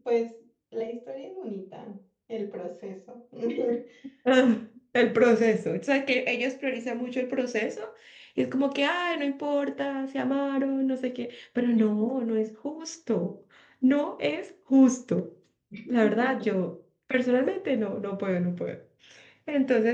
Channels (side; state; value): both; identical; correlation 1.00